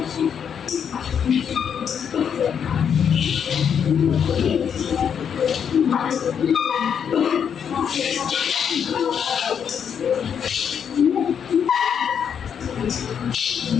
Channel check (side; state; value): right; quieter; 7.8 dB